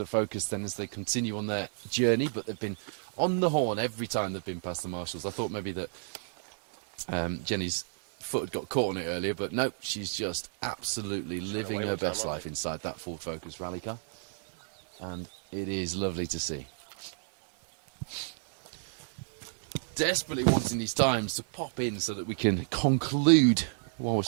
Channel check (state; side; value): silent; left; digital silence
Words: Focus then as they continue on their journey. But they've been on the horn every time they've been past the marshals. I thought maybe that Jenny's foot had got caught on it earlier, but nope, she's just absolutely living her best life inside that Ford Focus rally car. And it is lovely to see. Desperately wanting these times to pop in so that we can conclude while we're